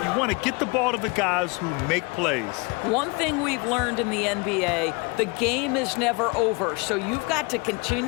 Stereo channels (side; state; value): right; quieter; 29.0 dB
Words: want to get the ball to the guys who make plays. One thing we've learned in the NBA, the game is never over, so you've got to